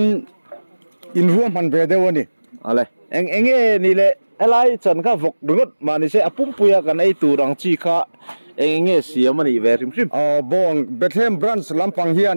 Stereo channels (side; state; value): both; inverted; correlation -1.00